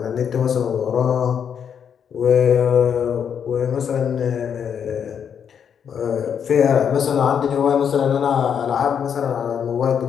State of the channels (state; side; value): quieter; right; 7.8 dB